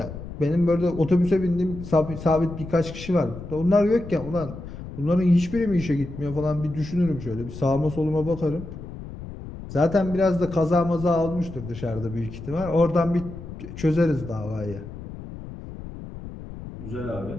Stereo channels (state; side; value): noise; left; rumble, 11 dB below the sound